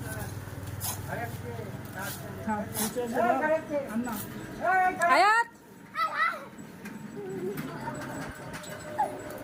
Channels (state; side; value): identical; both; correlation 1.00